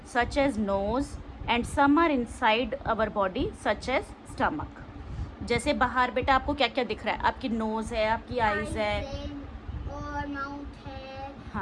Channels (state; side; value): identical; both; correlation 1.00